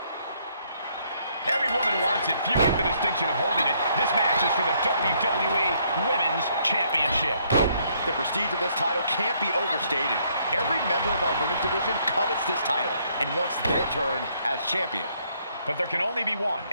Every woman wants it. Few get the distinction of holding it. This match is for the WWE Women's Championship. The prestige of this title can't be overstated. Every member of our women's division covets this title and wants their turn as champion. But there can only be one,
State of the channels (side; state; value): both; inverted; correlation -0.69